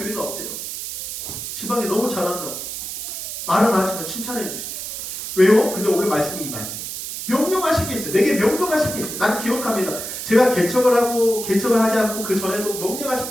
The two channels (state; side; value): noise; right; hiss, 7 dB below the sound